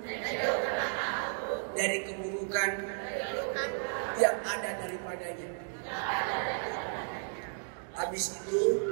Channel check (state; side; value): silent; left; digital silence